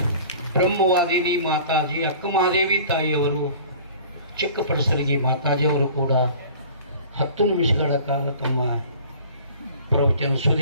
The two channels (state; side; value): inverted; both; correlation -0.46